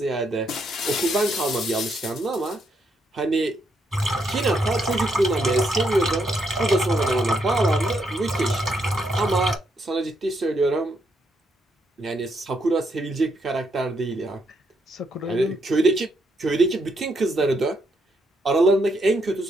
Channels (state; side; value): normal; both; correlation 0.77